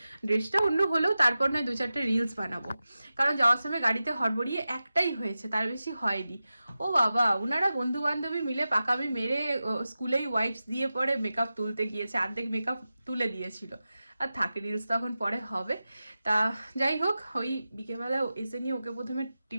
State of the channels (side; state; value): both; inverted; correlation -0.94